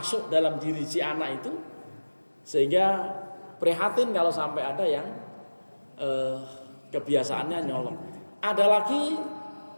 dalam diri si anak itu, sehingga prihatin kalau sampai ada yang kebiasaannya nyolong. Ada lagi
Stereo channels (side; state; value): both; inverted; correlation -1.00